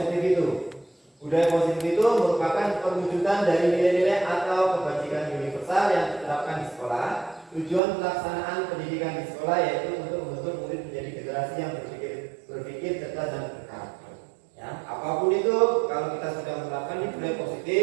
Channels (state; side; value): drops out; left; at 7.8 s